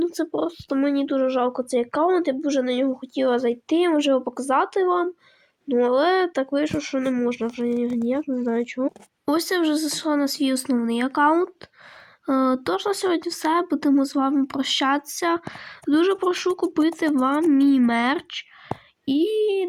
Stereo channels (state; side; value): identical; both; correlation 1.00